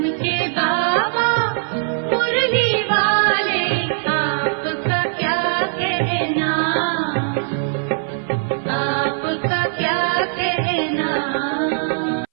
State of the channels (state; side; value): silent; left; 60 dB below the other